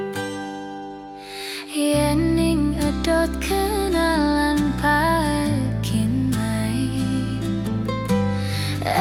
Yening edot kenalan pakin mai,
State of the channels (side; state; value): both; identical; correlation 1.00